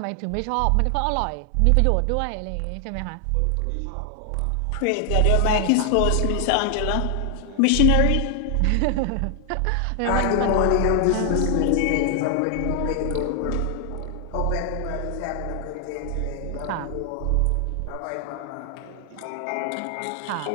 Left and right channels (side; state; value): both; different; correlation 0.00